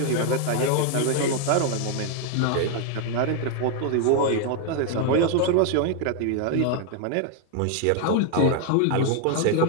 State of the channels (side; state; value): both; different; correlation 0.00